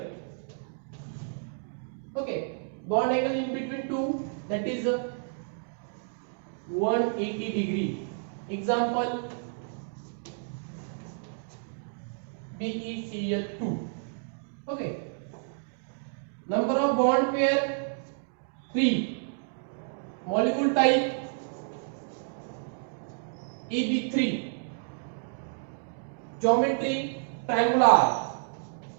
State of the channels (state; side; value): silent; left; digital silence